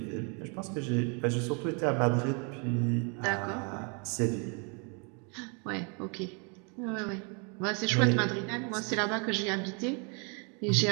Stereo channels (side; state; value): left; quieter; 35.6 dB